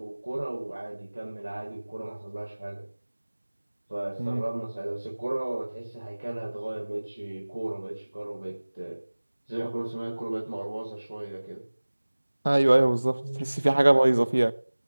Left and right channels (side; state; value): both; inverted; correlation -1.00